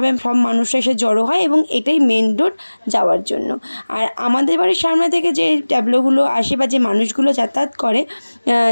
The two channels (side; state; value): both; inverted; correlation -1.00